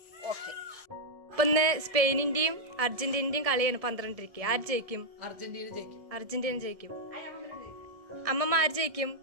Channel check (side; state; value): left; late; 1.7 ms